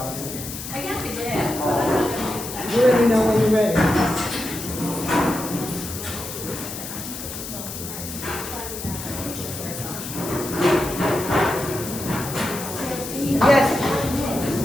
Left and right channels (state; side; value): noise; left; hiss, 9 dB below the sound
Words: I got the dad. You let me know when you're ready. Yes.